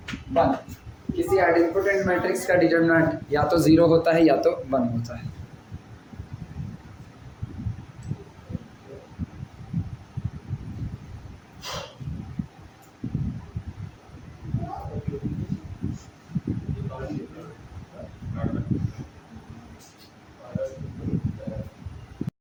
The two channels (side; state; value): both; identical; correlation 1.00